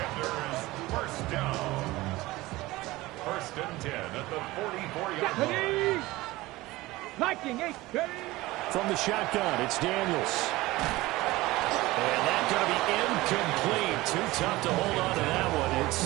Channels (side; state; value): left; quieter; 19.2 dB